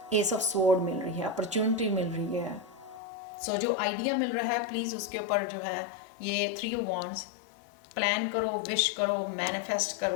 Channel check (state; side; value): drops out; right; at 3.0 s